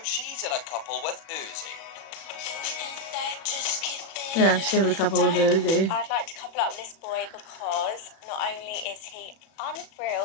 she's in a couple with Uzi. Yeah, she's gonna be a couple with Uzi. I'd like to couple up with this boy because not only is he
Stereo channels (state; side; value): late; right; 37 ms